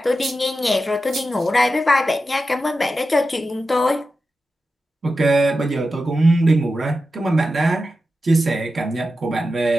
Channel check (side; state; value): both; normal; correlation 0.91